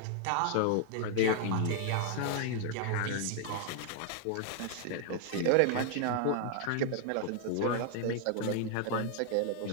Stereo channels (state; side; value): different; both; correlation 0.00